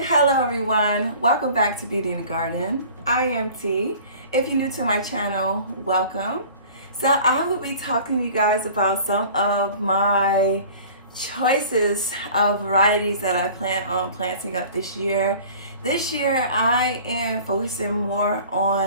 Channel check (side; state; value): both; inverted; correlation -0.45